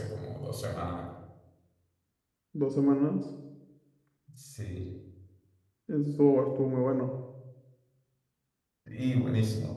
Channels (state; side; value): identical; both; correlation 1.00